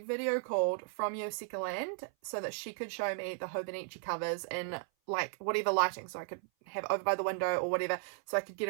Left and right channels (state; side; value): silent; left; 54 dB below the other